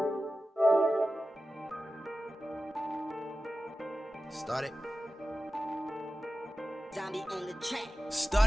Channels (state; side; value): normal; both; correlation 0.94